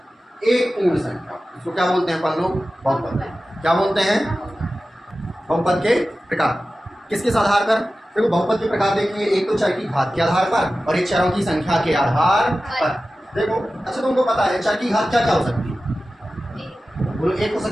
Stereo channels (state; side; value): normal; both; correlation 0.95